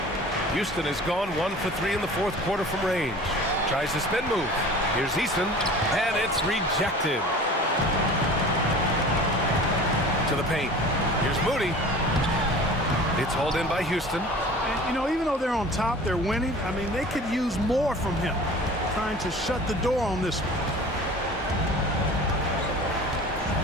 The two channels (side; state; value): both; normal; correlation 0.42